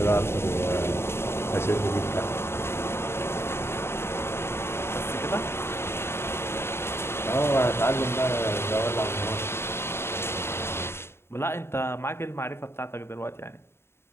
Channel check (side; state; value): right; late; 0.12 ms